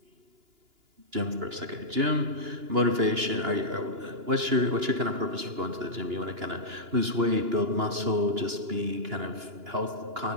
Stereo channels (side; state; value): left; late; 2.9 ms